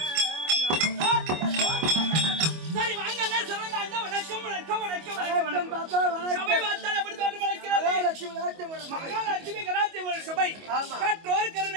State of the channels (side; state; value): left; late; 25 ms